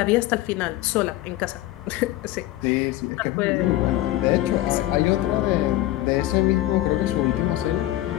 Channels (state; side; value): quieter; right; 15.7 dB